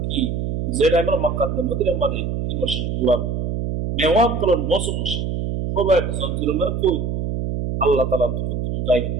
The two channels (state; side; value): noise; right; hum, 2 dB below the sound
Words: কি যেটা আমরা মক্কার মদিনার মধ্যে 3 মাস ঘুরাম মেওয়াত করার মৌসুম খুবাইবে জঞ্জির মানে কই আল্লাহ তাআলা তুমি গাইবে